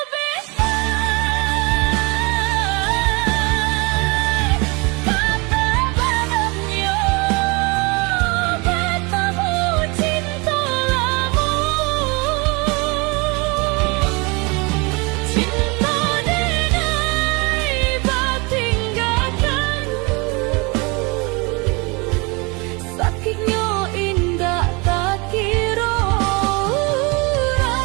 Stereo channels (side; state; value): left; quieter; 28.4 dB